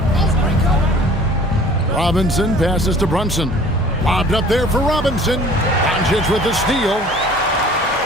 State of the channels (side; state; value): both; normal; correlation 0.49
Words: Robinson passes to Brunson. Lobbed up there for Robinson. Doncic with the steal.